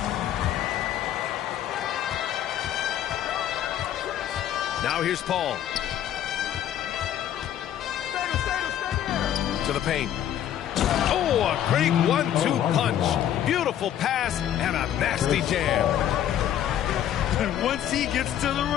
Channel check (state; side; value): quieter; right; 10.9 dB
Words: Now here's Paul. To the paint. Oh, a great 1-2 punch. Beautiful pass and a nasty jam. And once he gets to the